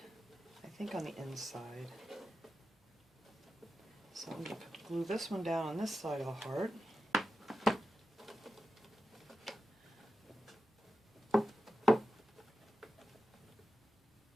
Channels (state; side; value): normal; both; correlation 0.91